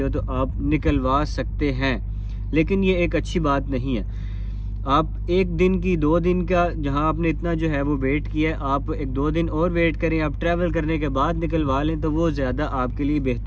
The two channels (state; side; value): identical; both; correlation 1.00